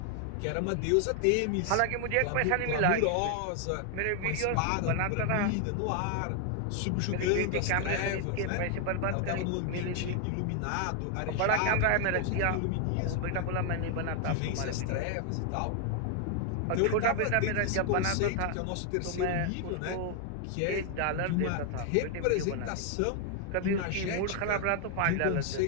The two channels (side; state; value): both; different; correlation 0.00